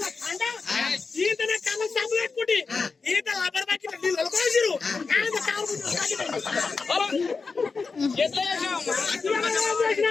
కండ ఈతనే కళ్ళ సబ్బు పెట్టుకుంటే ఈత లబ్బర్ బకెట్ నీళ్ళు కోసిరు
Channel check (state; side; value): quieter; right; 4.6 dB